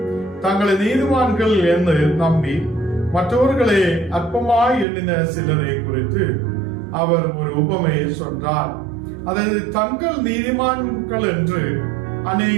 தங்களை நீதிமான்கள் என்று நம்பி மற்றவர்களை அற்பமாய் எண்ணின சிலரை குறித்து அவர் ஒரு உபமையை சொன்னார். அதாவது தங்கள் நீதிமான்கள் என்று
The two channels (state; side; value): drops out; left; at 4.9 s